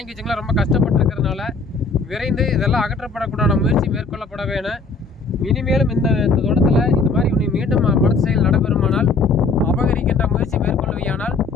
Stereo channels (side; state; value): right; quieter; 4.1 dB